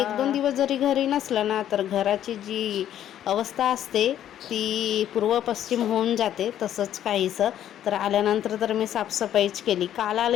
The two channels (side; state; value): right; quieter; 11.1 dB